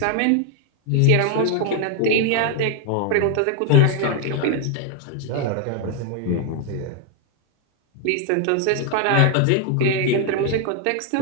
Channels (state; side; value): different; both; correlation 0.00